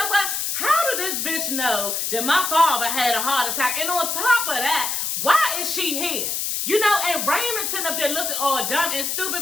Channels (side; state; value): left; noise; hiss, 1 dB below the sound